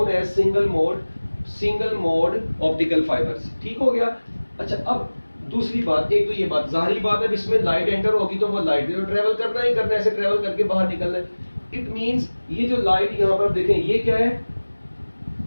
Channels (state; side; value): inverted; both; correlation -1.00